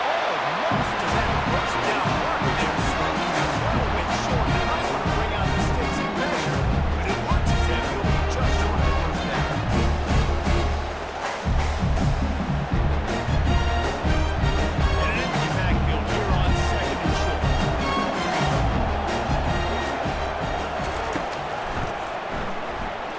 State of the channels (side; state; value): both; identical; correlation 1.00